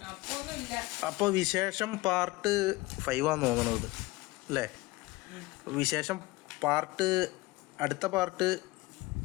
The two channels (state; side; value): quieter; right; 20.7 dB